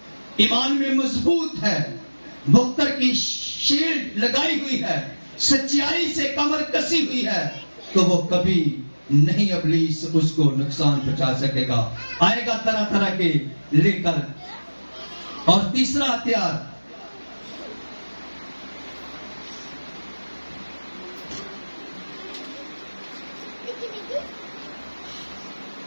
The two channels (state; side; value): inverted; both; correlation -1.00